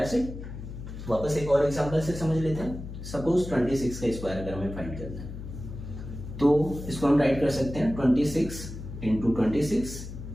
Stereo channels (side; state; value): left; noise; hum, 10 dB below the sound